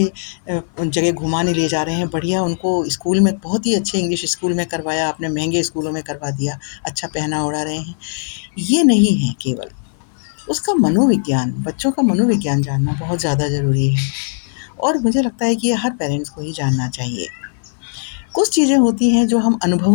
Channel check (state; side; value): silent; right; 56 dB below the other